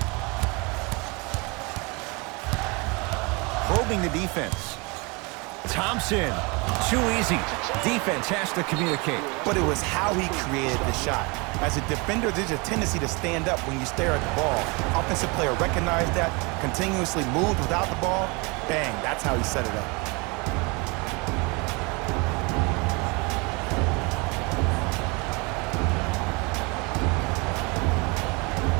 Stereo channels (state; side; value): quieter; left; 28.4 dB